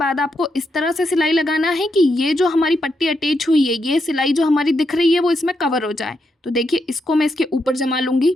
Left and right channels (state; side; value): normal; both; correlation 0.82